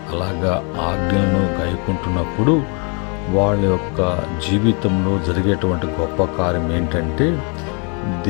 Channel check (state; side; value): quieter; right; 35.5 dB